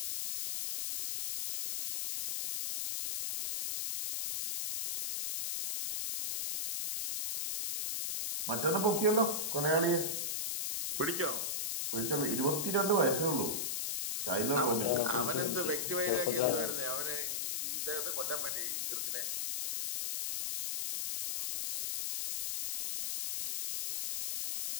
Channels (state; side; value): noise; left; hiss, 2 dB below the sound